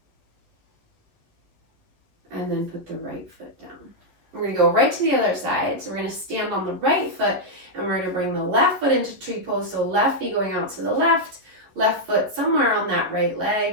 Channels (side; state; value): left; late; 11 ms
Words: And then put the right foot down. We're going to go right to the other side. So we're going to stand on the right foot, and we're going to bring the left foot into tree pose. So left knee going out to the left foot somewhere on that right